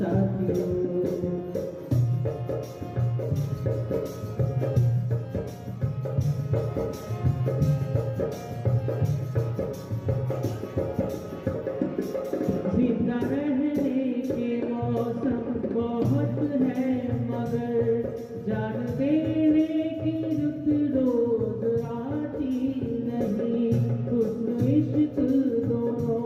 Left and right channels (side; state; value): both; identical; correlation 1.00